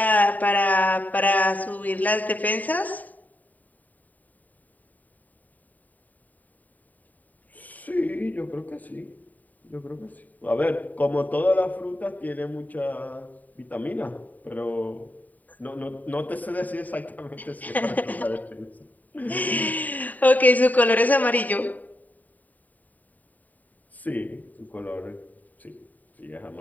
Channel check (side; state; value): right; late; 0.079 ms